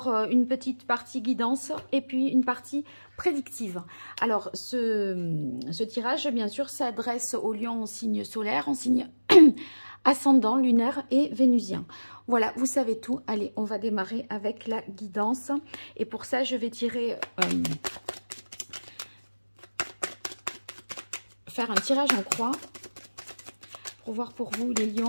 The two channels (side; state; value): both; inverted; correlation -1.00